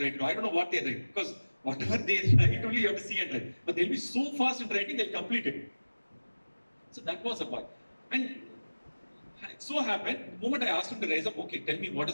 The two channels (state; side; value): inverted; both; correlation -1.00